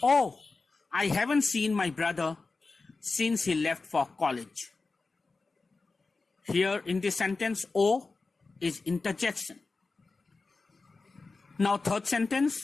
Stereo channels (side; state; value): right; quieter; 3.9 dB